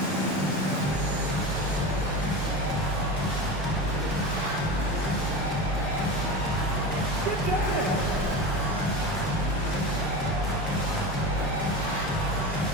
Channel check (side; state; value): both; normal; correlation 0.27